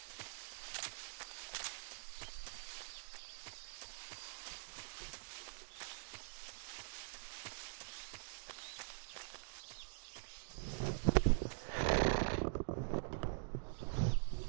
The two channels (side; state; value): left; silent; digital silence